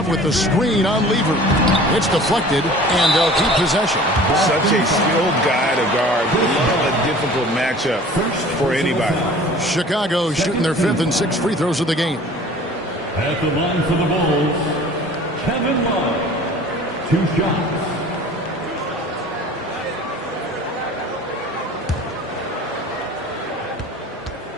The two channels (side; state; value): both; normal; correlation 0.45